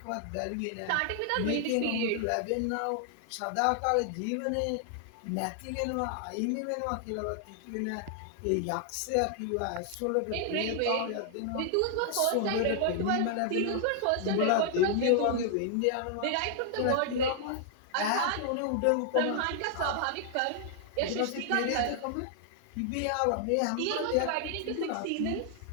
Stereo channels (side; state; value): both; different; correlation 0.00